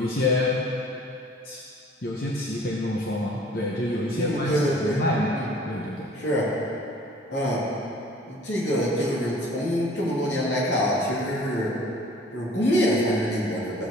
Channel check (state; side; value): normal; both; correlation 0.51